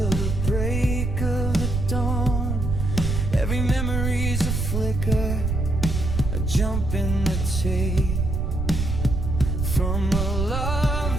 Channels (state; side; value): noise; right; rumble, 1 dB below the sound